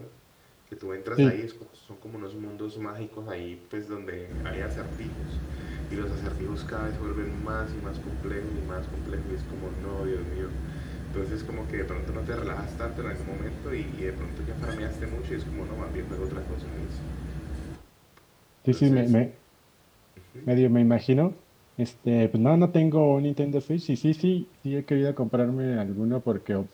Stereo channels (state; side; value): identical; both; correlation 1.00